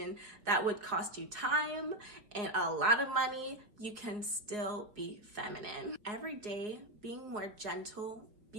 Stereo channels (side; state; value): left; late; 4.7 ms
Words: that would cost you time and a lot of money, you can still be feminine. Every day, being more gentle,